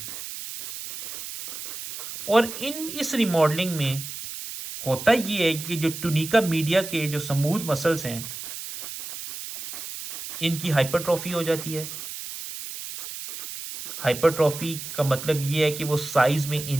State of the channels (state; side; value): noise; right; hiss, 9 dB below the sound